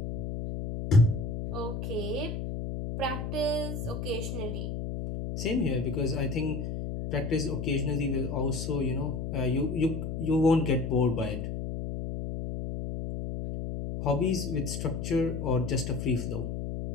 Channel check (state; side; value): noise; left; hum, 4 dB below the sound